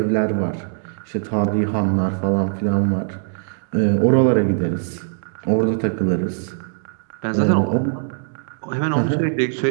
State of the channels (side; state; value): left; silent; digital silence